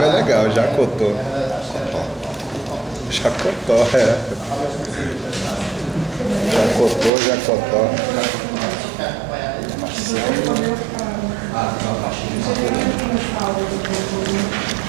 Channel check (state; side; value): drops out; left; at 7.1 s